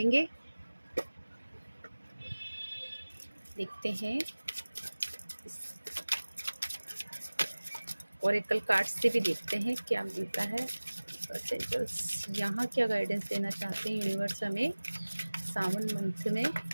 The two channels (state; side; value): inverted; both; correlation -1.00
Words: देखते हैं ओरेकल कार्ड से भी देखते हैं क्या मिलता है। एंजल्स यहाँ क्या गाइडेंस देना चाहते हैं यूनिवर्स हमें सावन मंथ में।